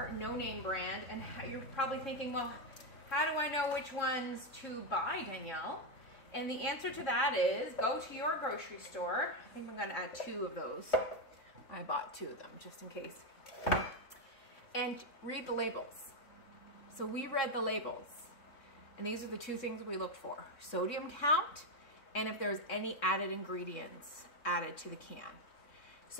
no-name brand, and you're probably thinking, well, how do I know which ones to buy, Danielle? And the answer to that is go to your grocery store. I think I'm gonna add 2 of those. I bought 2 of them just in case. And read the labels. So we read the labels, and these are the 2 things we looked for: sodium count, and if there's any added ingredients added to the can.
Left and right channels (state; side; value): late; right; 3.6 ms